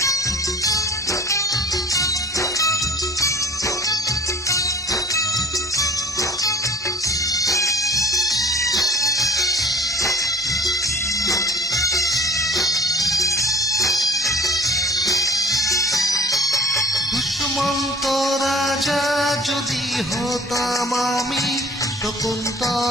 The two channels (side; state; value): both; normal; correlation 0.48